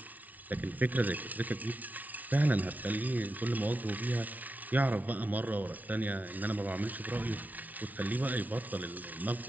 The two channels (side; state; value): left; late; 0.075 ms